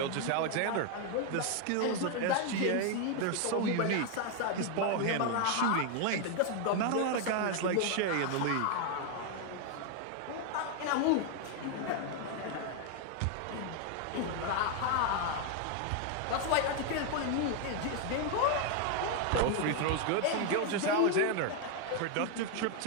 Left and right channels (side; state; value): both; different; correlation 0.01